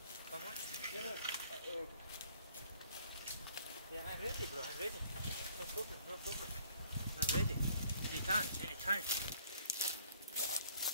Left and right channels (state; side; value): inverted; both; correlation -0.59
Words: Yeah, I'm ready, bro. I'm ready. No problem. I'm ready. Anytime.